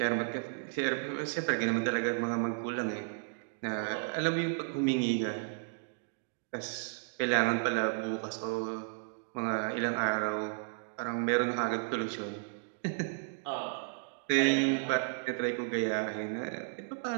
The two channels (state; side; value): silent; left; digital silence